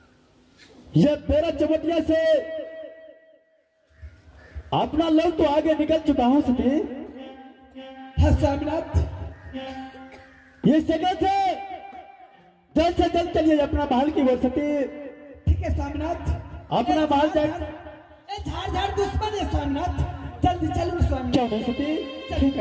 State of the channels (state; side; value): identical; both; correlation 1.00